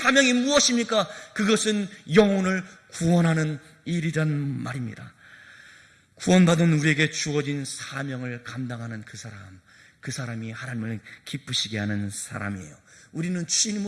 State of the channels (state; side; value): identical; both; correlation 1.00